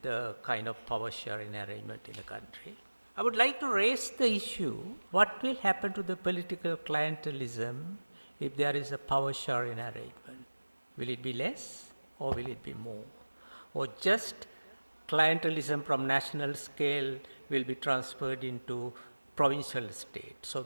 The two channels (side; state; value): both; inverted; correlation -1.00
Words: the kind of power sharing arrangement in the country. I would like to raise the issue, what will happen to the political clientelism if there is a power sharing arrangement? Will it be less or will it be more? Or just clientelism from national scale will be transferred into provincial state? So